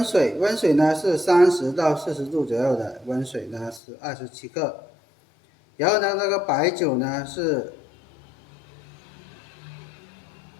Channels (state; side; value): drops out; right; at 3.8 s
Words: 水，溫水呢是30到40度左右的，溫水呢是27克，然後呢那個白酒呢是